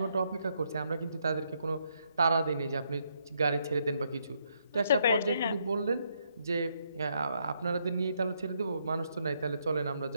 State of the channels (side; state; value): both; inverted; correlation -0.75